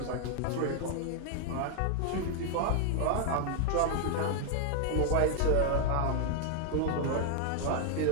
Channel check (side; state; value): both; different; correlation 0.00